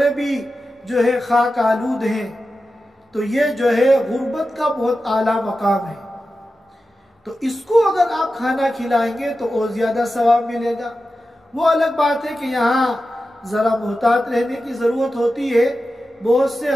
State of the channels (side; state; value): both; normal; correlation 0.92